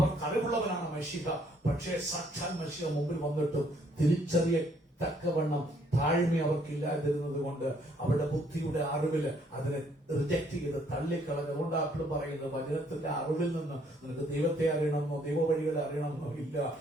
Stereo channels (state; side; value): normal; both; correlation 0.66